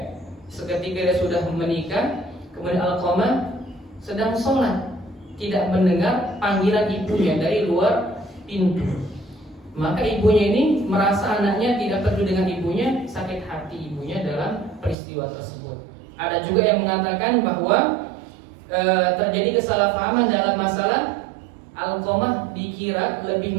seketika dia sudah menikah, kemudian Alqamah sedang sholat, tidak mendengar panggilan ibunya dari luar pintu. Maka ibunya ini merasa anaknya tidak peduli dengan ibunya, sakit hati ibunya dalam peristiwa tersebut. Ada juga yang mengatakan bahwa terjadi kesalahpahaman dalam masalah Alqamah dikira lebih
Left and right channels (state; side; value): drops out; left; at 15.0 s